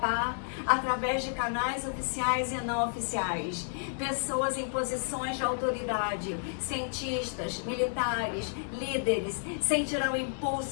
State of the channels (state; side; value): silent; right; digital silence